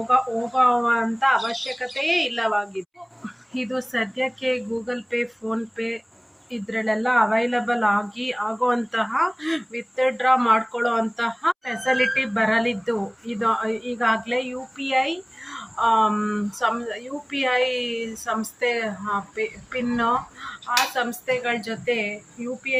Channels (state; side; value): identical; both; correlation 1.00